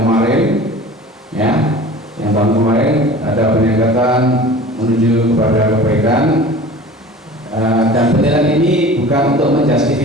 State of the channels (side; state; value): both; normal; correlation 0.41